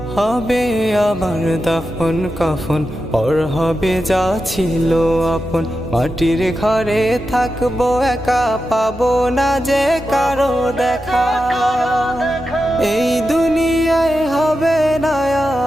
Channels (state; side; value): normal; both; correlation 0.90